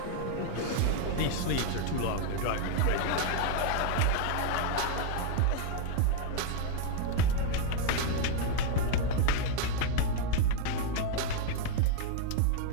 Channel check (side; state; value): both; different; correlation 0.00